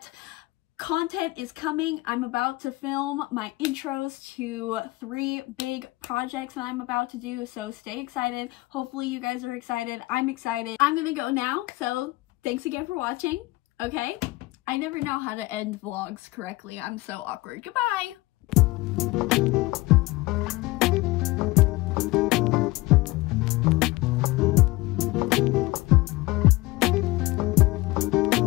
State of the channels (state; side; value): quieter; right; 20.9 dB